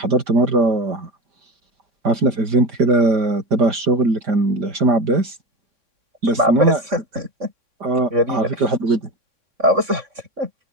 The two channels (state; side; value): late; left; 3.6 ms